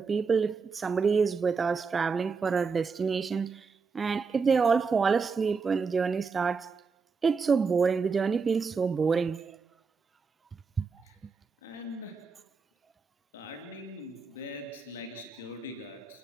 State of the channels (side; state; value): left; quieter; 5.1 dB